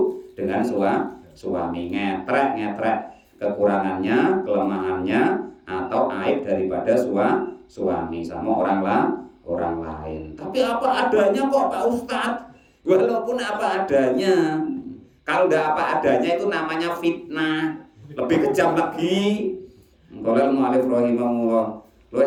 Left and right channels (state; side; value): identical; both; correlation 1.00